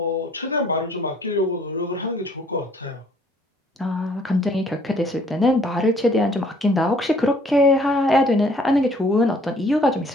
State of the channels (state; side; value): normal; both; correlation 0.59